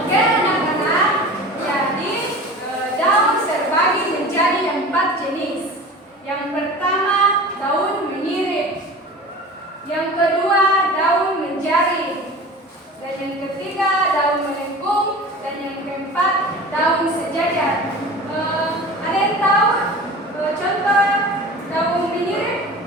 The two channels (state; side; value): normal; both; correlation 0.37